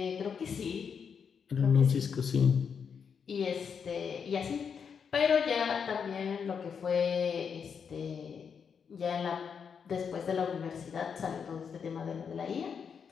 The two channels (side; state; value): right; quieter; 6.7 dB